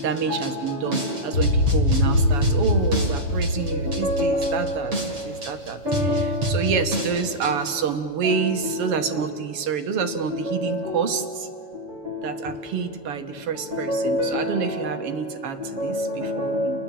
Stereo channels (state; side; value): late; left; 7.1 ms